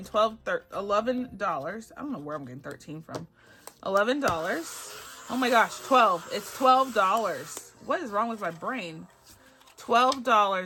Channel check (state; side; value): identical; both; correlation 1.00